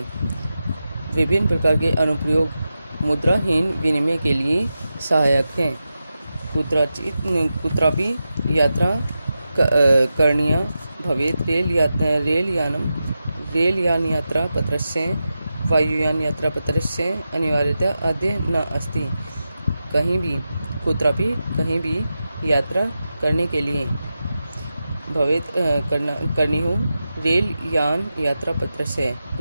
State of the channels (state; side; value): inverted; both; correlation -0.91